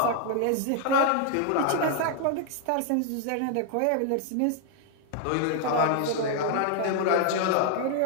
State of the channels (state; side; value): different; both; correlation 0.00